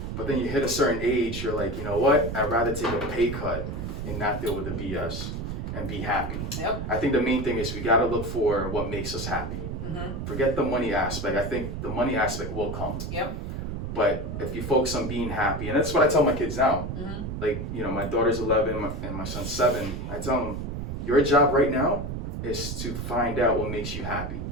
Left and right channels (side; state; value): right; noise; rumble, 5 dB below the sound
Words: But then you hit a certain age, you're like, you know what? I'd rather take a pay cut and not deal with the BS and be happy. Yep. I think the main thing is we got to look for what makes us happy. Forget the money aspect. I think the money aspect will come. Yep. But if you focus on being happy, and that's what I tell my kids now. Like, my daughter's 11 and my son's 7. I tell them, your job right now is to find out what makes you happy.